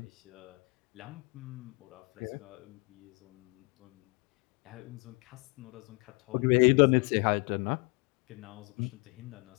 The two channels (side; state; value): right; quieter; 34.3 dB